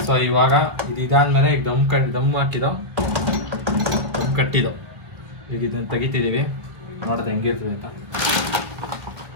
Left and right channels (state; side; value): late; left; 1.8 ms